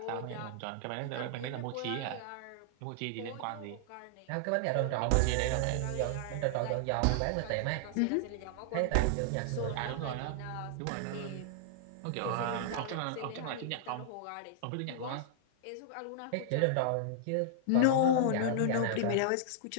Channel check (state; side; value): different; both; correlation -0.01